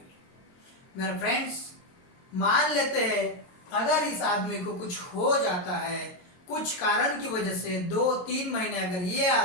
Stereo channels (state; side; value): late; right; 22 ms